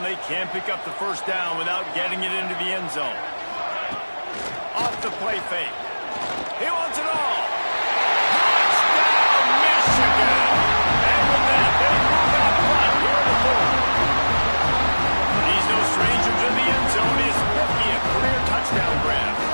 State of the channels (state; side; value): inverted; both; correlation -1.00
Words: they can't pick up the first down without getting it into the end zone. Off the play fake. He wants it all. Touchdown, Michigan! And with that, they move out front here in the fourth. He's no stranger to the end zone. His 50th career touchdown grab.